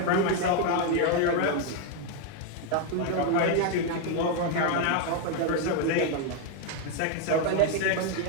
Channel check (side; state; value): both; different; correlation 0.01